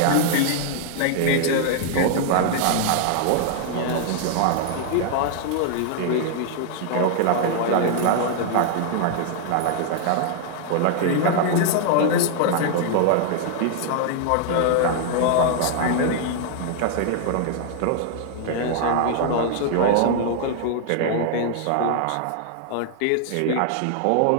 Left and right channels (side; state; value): both; different; correlation 0.00